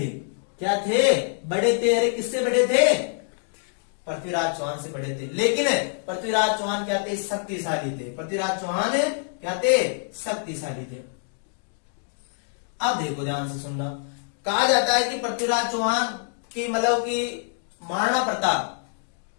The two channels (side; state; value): right; silent; digital silence